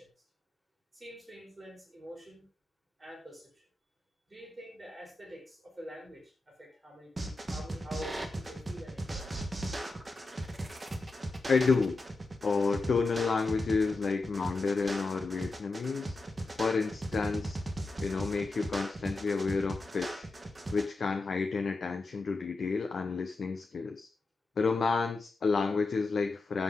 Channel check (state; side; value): quieter; right; 3.4 dB